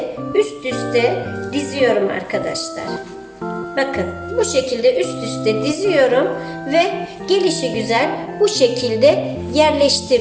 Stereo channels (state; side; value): identical; both; correlation 1.00